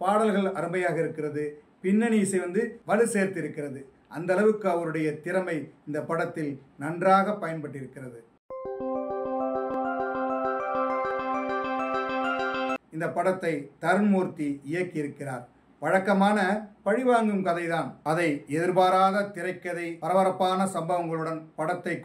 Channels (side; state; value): both; identical; correlation 1.00